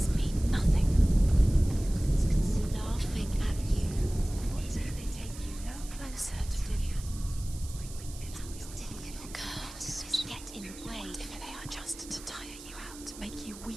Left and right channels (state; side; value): noise; right; hiss, 16 dB below the sound